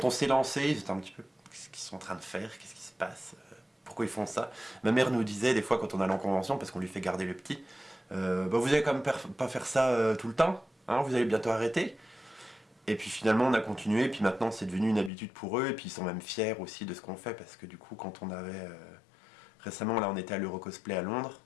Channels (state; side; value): drops out; right; at 15.1 s